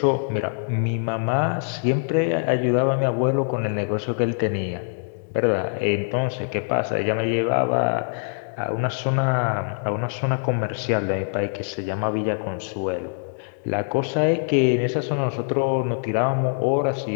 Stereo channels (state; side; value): silent; right; digital silence